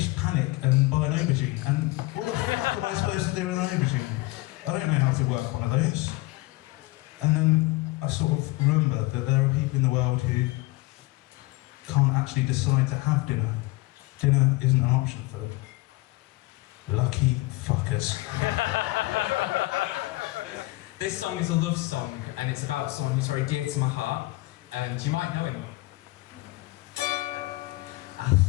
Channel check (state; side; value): quieter; right; 20.5 dB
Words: panic and buy an aubergine. And what the fuck am I supposed to do with an aubergine? I don't know how to work one of those. And then I sort of remember that there are people in the world who can't actually decide to have dinner. Dinner isn't an option for them. Lucky fuckers. This song is a love song, and it's about someone who's very dear to my heart, and you might know him. I